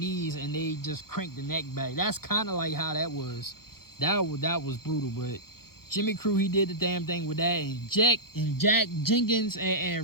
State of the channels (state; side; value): late; right; 0.94 ms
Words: and they just crank the neck back. That's kind of like how that was. That was brutal, but Jimmy Crute, he did the damn thing with that, and Jack Jenkins